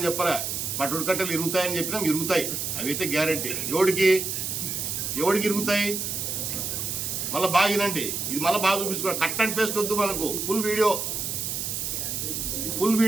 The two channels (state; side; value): noise; right; hiss, 3 dB below the sound